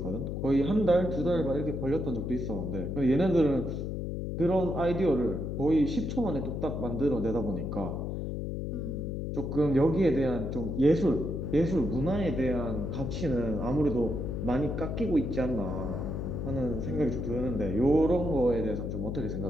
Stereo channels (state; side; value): noise; left; hum, 3 dB below the sound